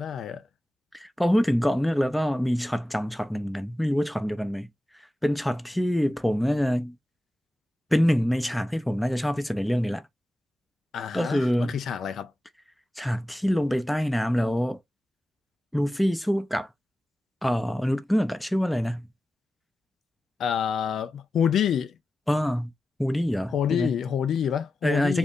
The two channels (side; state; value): both; normal; correlation 0.93